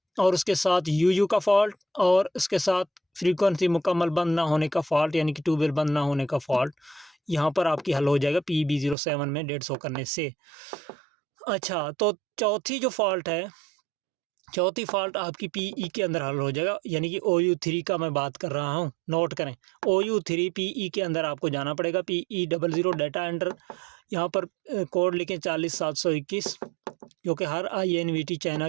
और उसके साथ UU का फॉल्ट, और उसके साथ फ्रीक्वेंसी मुकम्मल बंद ना होने का फॉल्ट यानी कि ट्यूबवेल बंद ना होने का फॉल्ट। यहाँ पर आपकी हल हो जाएगा PB07 में 150 करने से। अच्छा, तो चौथी जो फॉल्ट है, चौथी फॉल्ट आपकी PE के अंदर हल हो जाएगा, यानी कि OU3 का मैं बात कर रहा हूँ। नोट करें, OU3 PE के अंदर आपको जाना पड़ेगा। PE00 डेटा एंटर, यहाँ पर कोड लिखें 40721, जो कि हर INVT चाइना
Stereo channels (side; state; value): left; drops out; at 9.0 s